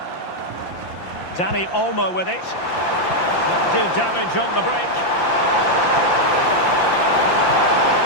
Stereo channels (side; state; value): right; late; 5.8 ms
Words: Dani Olmo with it. Do damage on the break.